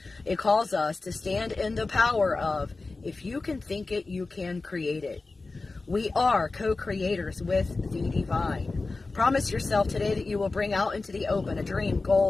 It calls us to stand in the power of, if you can think it, you can create it. We are co-creators with the divine. Promise yourself today that you will bring out into the open a dream,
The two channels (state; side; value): quieter; right; 3.6 dB